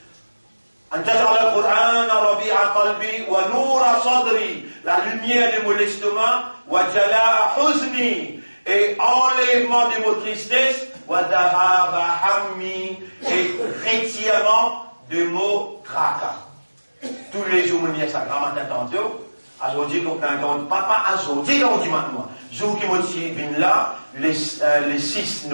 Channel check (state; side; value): inverted; both; correlation -1.00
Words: أن تجعل القرآن ربيع قلبي ونور صدري. La lumière de mon estomac. وجلاء حزني. Et enlèvement de mon tristesse. وذهاب همي. Et retirement de mon tracas. Tous les jours, je me dis ça, grand matin tantôt. Aujourd'hui, papa, aujourd'hui, maintenant. Jour qui me là, le 6